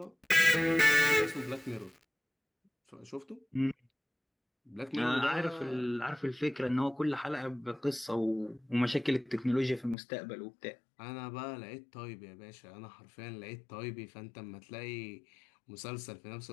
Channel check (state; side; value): drops out; right; at 10.0 s